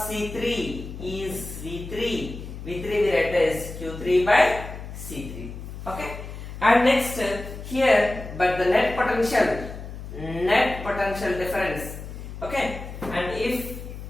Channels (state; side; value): noise; left; hum, 10 dB below the sound